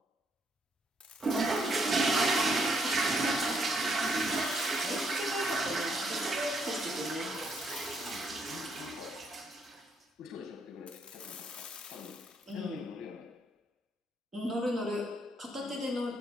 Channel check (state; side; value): normal; both; correlation 0.73